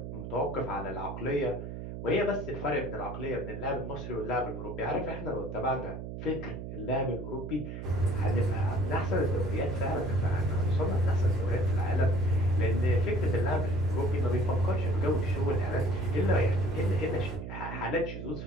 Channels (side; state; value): right; noise; hum, 8 dB below the sound